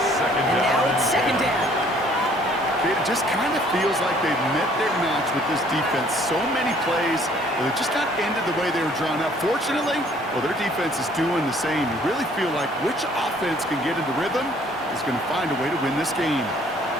now it's 2nd down. It just kind of feels like they've met their match with this defense. So many plays, but it just not ended the way they were drawn up. Fortunately, well, their defense is doing the same. You really feel like which offense can get into rhythm is going to find a way to win this game.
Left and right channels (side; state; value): both; normal; correlation 0.59